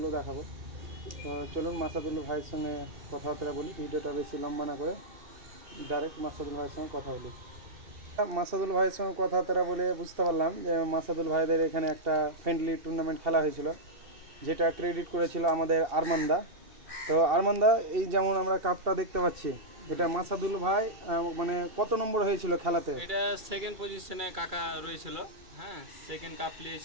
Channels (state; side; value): late; left; 2.7 ms